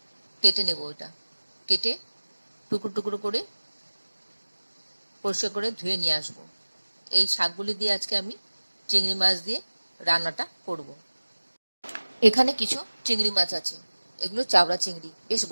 কেটে নেব। এটা কেটে টুকরো টুকরো করে পরিষ্কার করে ধুয়ে নিয়ে আসব। এই শাকগুলি দিয়ে আজকে আমি চিংড়ি মাছ দিয়ে রান্নাটা করব। এখানে কিছু চিংড়ি মাছ আছে, এগুলো চাবড়া চিংড়ি, বেশ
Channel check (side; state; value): both; inverted; correlation -1.00